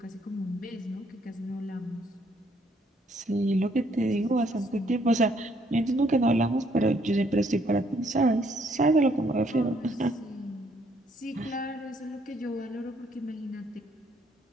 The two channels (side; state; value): both; normal; correlation 0.68